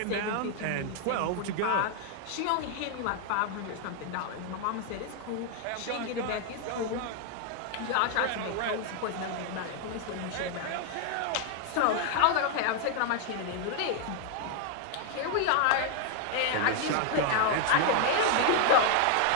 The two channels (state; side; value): different; both; correlation 0.00